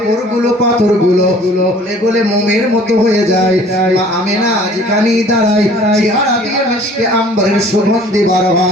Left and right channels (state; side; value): normal; both; correlation 0.52